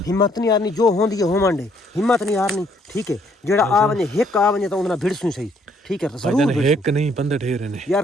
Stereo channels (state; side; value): normal; both; correlation 0.67